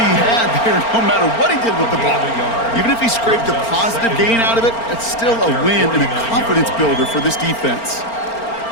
had there, no matter what he did with the ball. Even if he scraped a positive gain out of it, that's still a win and a confidence builder for this defense.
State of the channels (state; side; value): late; right; 4.4 ms